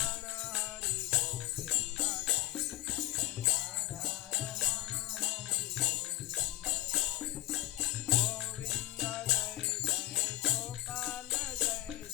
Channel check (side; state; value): right; quieter; 17.4 dB